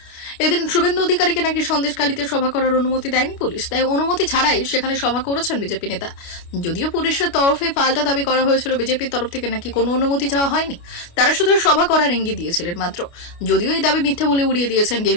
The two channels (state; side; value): late; right; 29 ms